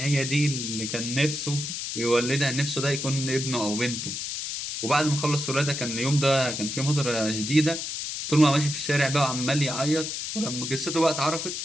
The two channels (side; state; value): left; noise; hiss, 5 dB below the sound